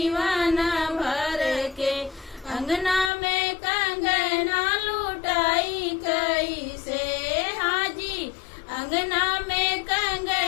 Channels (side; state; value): right; drops out; at 3.1 s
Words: भर के। अंगना में कंगना लुटाई कैसे, हाँ जी, अंगना में